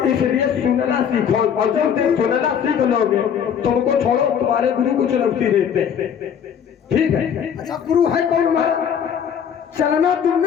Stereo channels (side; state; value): right; quieter; 8.1 dB